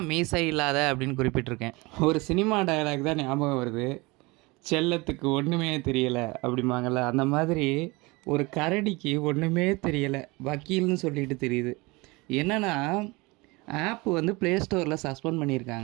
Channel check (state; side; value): quieter; left; 24.4 dB